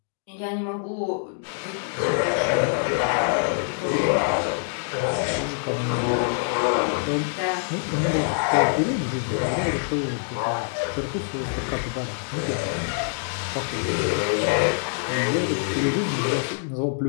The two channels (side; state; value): right; silent; digital silence